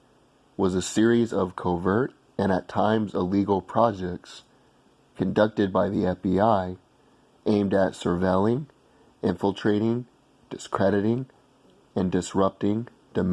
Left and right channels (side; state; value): both; identical; correlation 1.00